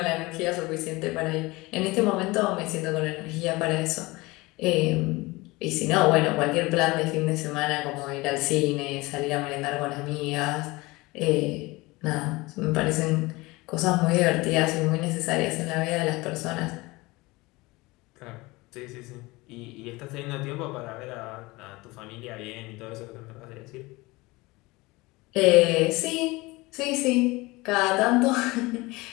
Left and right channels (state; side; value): quieter; right; 22.3 dB